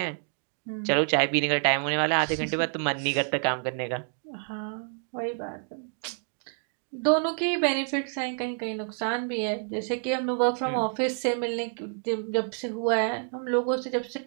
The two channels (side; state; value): left; silent; 55 dB below the other